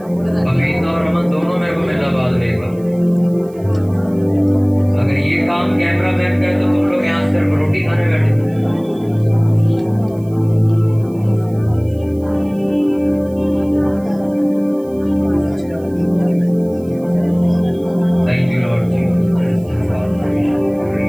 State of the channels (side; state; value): right; noise; hiss, 28 dB below the sound